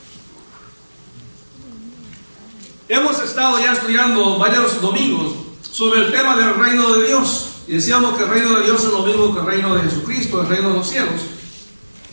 Hemos estado ya estudiando varios domingos sobre el tema del reino de Dios. Y decíamos que el reino de Dios es lo mismo que el reino de Jesucristo, el reino de los cielos.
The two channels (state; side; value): inverted; both; correlation -1.00